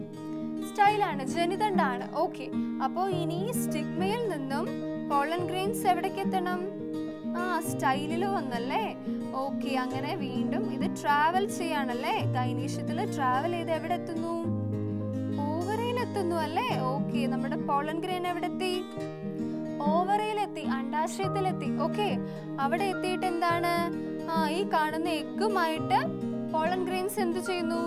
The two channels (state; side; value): identical; both; correlation 1.00